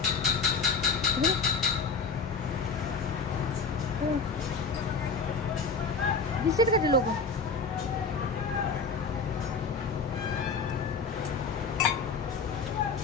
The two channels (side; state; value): right; quieter; 4.7 dB